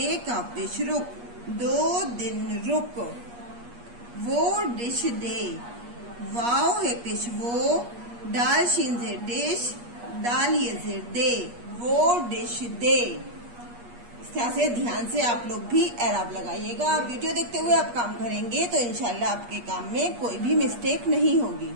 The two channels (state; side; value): late; left; 8.4 ms